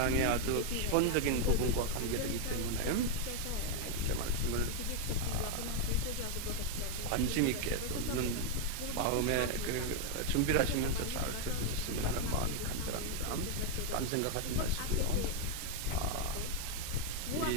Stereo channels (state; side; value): different; both; correlation 0.00